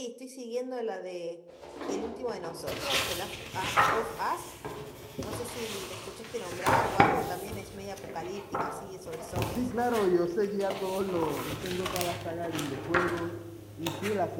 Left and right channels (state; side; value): identical; both; correlation 1.00